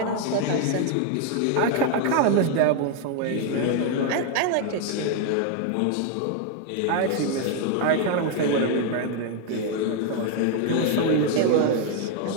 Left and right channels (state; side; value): different; both; correlation 0.01